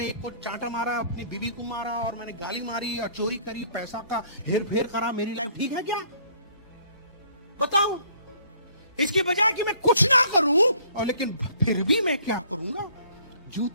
एक को चांटा मारा, अपनी बीवी को मारा, और मैंने गाली मारी और चोरी करी, पैसा का हेर फेर करा, मेरी लाइफ ठीक है क्या? बताओ। इसके बजाय कि मैं कुछ ना करूं, और लेकिन फिर भी मैं क्या करूंगा,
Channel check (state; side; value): inverted; both; correlation -0.59